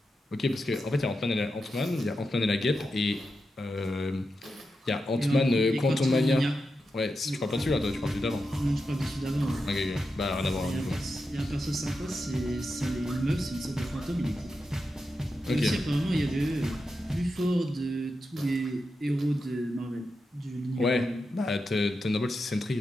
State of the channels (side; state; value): both; normal; correlation 0.88